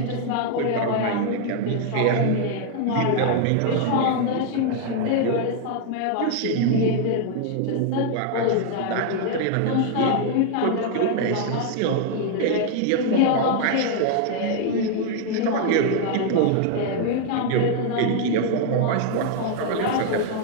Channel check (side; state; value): both; different; correlation 0.00